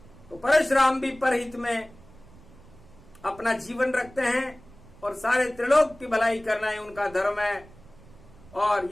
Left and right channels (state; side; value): noise; right; rumble, 23 dB below the sound